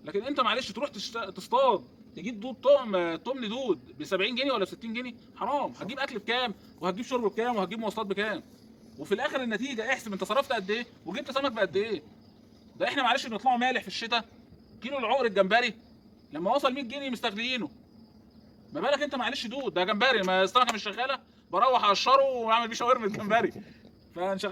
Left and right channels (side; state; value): both; identical; correlation 1.00